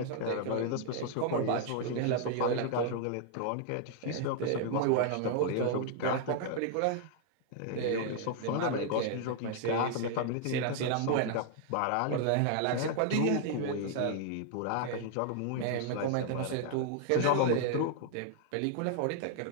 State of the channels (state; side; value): different; both; correlation 0.00